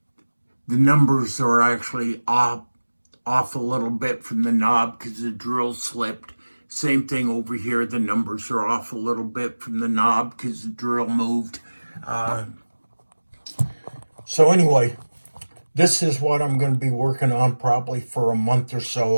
the numbers are actually off a little bit from the knob because the drill slipped. Same thing over here, the numbers are off a little bit from the knob because the drill moved. So anyway, this is what I'm going to be working on probably for a month or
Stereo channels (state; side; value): inverted; both; correlation -1.00